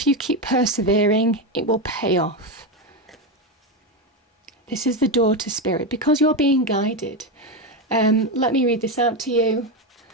you keep persevering, it will pay off. This is the door to spirit, because you're being guided. Let me read this out to you.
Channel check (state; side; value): normal; both; correlation 0.12